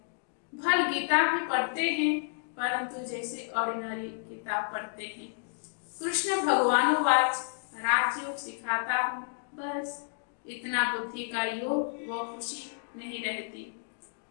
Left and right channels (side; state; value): right; silent; digital silence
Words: भल गीता भी पढ़ते हैं, परंतु जैसे ऑर्डिनरी किताब पढ़ते हैं। कृष्ण भगवानोवाच राजयोग सिखाता हूँ, बस इतना बुद्धि का योग व खुशी नहीं रहती।